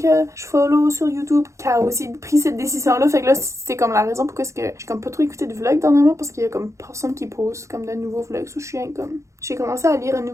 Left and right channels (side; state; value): left; late; 0.14 ms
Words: je follow sur YouTube qui a aussi pris cette décision là. Fait que là c'est comme la raison pourquoi est-ce que j'ai comme pas trop écouté de vlogs dernièrement parce qu'il y a comme personne qui poste comme de nouveaux vlogs. So, je suis comme j'ai commencé à lire un